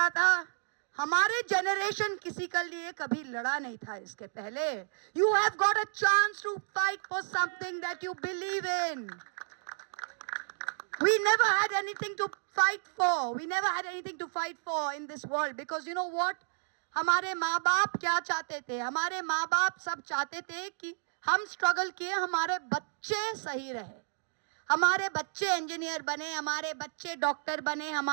था। हमारे जनरेशन किसी के लिए कभी लड़ा नहीं था इसके पहले। You have got a chance to fight for something that you believe in. We never had anything to fight for. We never had anything to fight for in this world because you know what? हमारे माँ बाप क्या चाहते थे? हमारे माँ बाप सब चाहते थे कि हम स्ट्रगल किए, हमारे बच्चे सही रहे, हमारे बच्चे इंजीनियर बने, हमारे बच्चे डॉक्टर बने,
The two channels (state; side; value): silent; left; digital silence